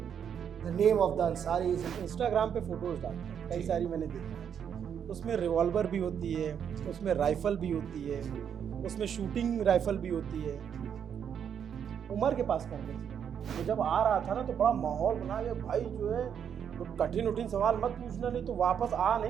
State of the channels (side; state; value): left; quieter; 8.2 dB